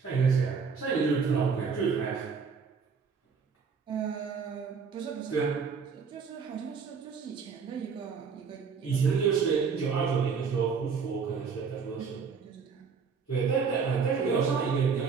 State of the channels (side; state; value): left; quieter; 5.7 dB